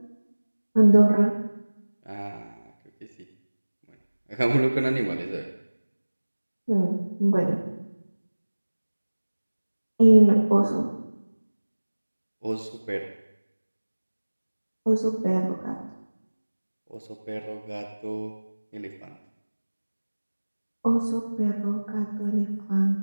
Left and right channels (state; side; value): inverted; both; correlation -1.00